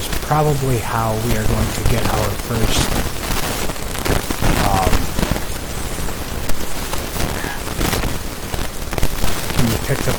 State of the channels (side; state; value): both; identical; correlation 1.00